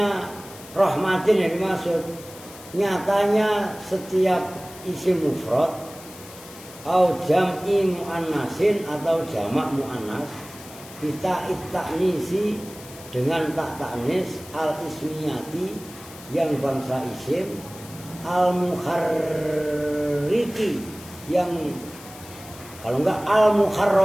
rahmatin yang dimaksud? Nyatanya setiap isim mufrad atau jam'i mu'annasin atau jamak mu'annas kita ta'nisi dengan tak ta'nis al-ismiyati yang bangsa isim al-mukharriki yang kalau enggak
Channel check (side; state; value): left; noise; hiss, 18 dB below the sound